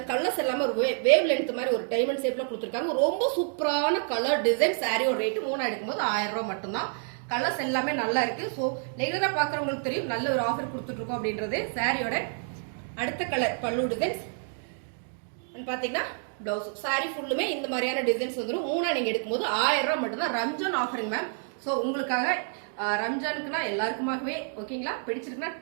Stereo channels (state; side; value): silent; left; 59 dB below the other